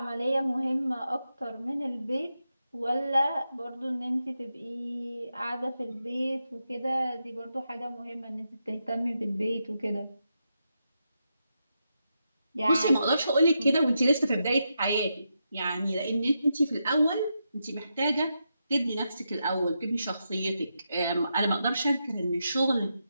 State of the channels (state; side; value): inverted; both; correlation -0.85